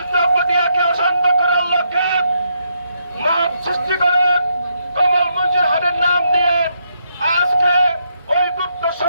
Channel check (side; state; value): both; inverted; correlation -0.77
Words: পটিয়াকে অশান্ত করার লক্ষ্যে মাপ সৃষ্টি করে কমল মঞ্জুর হাটের নাম দিয়ে আজকে ওই গুপ্ত